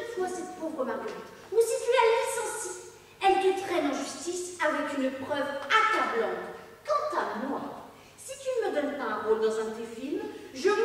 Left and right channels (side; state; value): both; identical; correlation 1.00